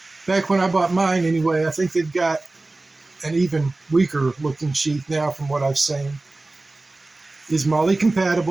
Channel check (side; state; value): left; quieter; 3.1 dB